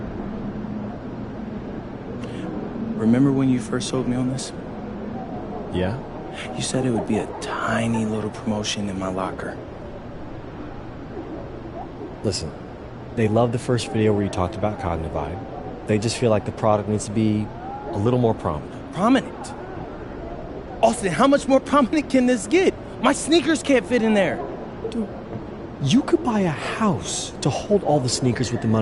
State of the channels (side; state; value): both; identical; correlation 1.00